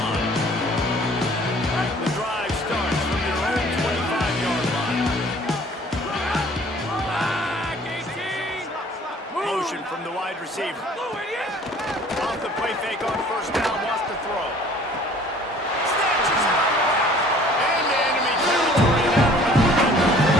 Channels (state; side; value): normal; both; correlation 0.53